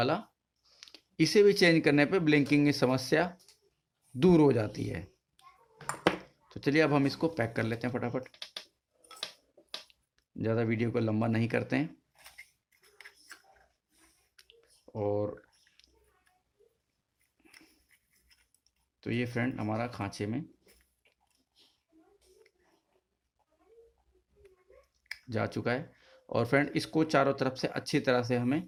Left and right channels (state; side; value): identical; both; correlation 1.00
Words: इसे भी चेंज करने पे ब्लिंकिंग की समस्या दूर हो जाती है। तो चलिए अब हम इसको पैक कर लेते हैं फटाफट, ज़्यादा वीडियो को लंबा नहीं करते हैं। और तो ये फ्रेंड हमारा खांचे में जा चुका है। और फ्रेंड इसको चारों तरफ से अच्छी तरह से हमें